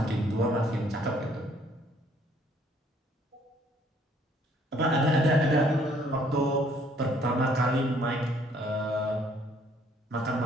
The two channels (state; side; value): normal; both; correlation 0.62